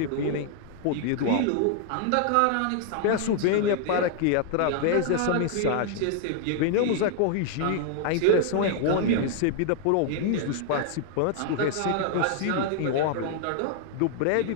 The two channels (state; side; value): different; both; correlation 0.00